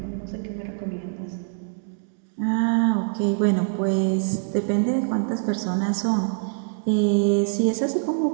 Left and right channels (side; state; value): left; silent; digital silence